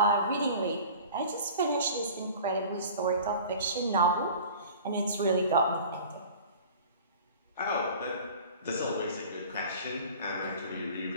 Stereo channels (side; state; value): both; inverted; correlation -0.42